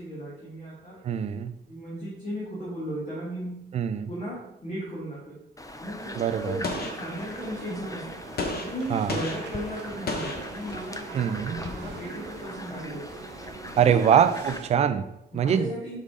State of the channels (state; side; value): quieter; left; 5.4 dB